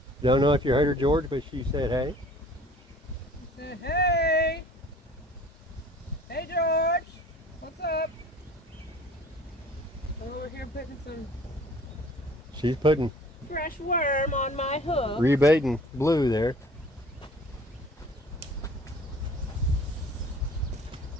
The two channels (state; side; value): normal; both; correlation 0.50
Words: Don't know if you heard her, George, but she said hey. He said, hey! Hey, George! What's up? We're over here putting some She's putting fresh worm on my hook. rebaiting blue there.